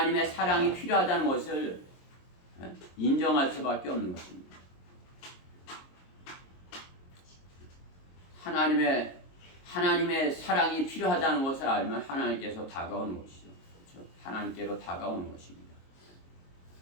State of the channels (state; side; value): late; right; 22 ms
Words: 사랑이 필요하다는 것을 인정할 수밖에 없는 것입니다. 하나님의 사랑이 필요하다는 것을 알면 하나님께서 다가오는 것이죠. 그렇죠? 하나님께로 다가오는 것입니다.